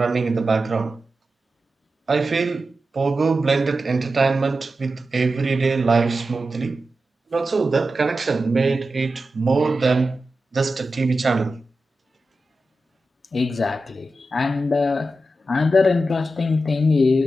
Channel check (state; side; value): normal; both; correlation 0.91